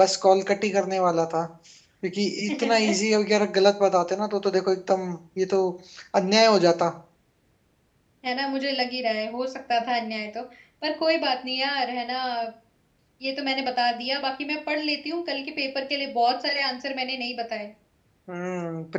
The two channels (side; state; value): both; identical; correlation 1.00